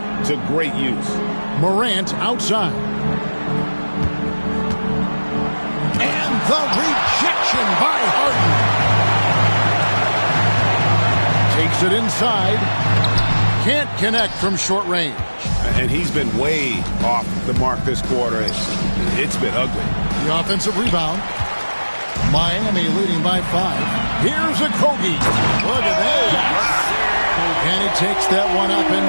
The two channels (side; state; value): both; inverted; correlation -1.00